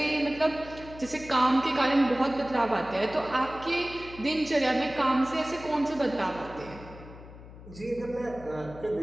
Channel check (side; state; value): left; noise; hum, 17 dB below the sound